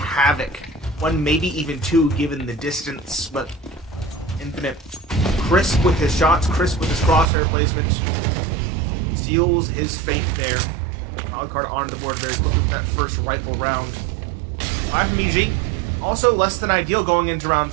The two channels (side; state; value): left; drops out; at 7.2 s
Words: One, maybe even two, given the distance, but Infinite, crisp with his shots, crisp with his crosshair placements, seals his fate there. Wildcard onto the board very quickly with that first rifle round. 5 from EG, also less than ideal going into round